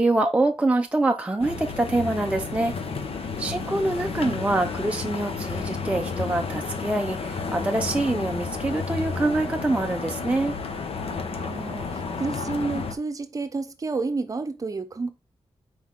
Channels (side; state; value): both; normal; correlation 0.81